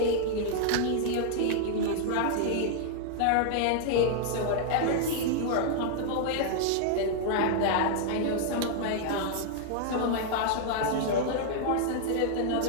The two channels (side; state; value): both; different; correlation -0.01